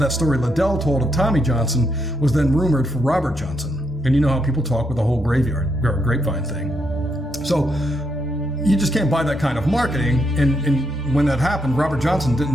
story Liddell told of Tommy Johnson was then rumored for Robert Johnson. And you know how people talk with the whole grapevine thing. So you just can't buy that kind of marketing. And when that happened, Robert Johnson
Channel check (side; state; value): both; normal; correlation 0.79